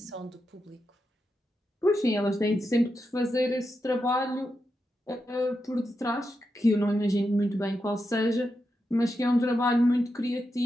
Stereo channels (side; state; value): both; normal; correlation 0.87